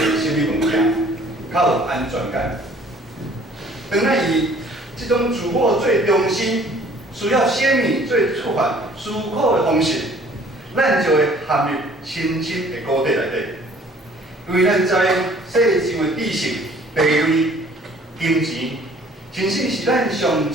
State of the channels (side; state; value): both; normal; correlation 0.55